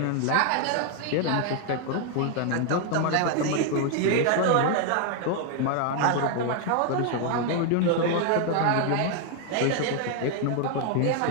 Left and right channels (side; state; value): both; different; correlation 0.00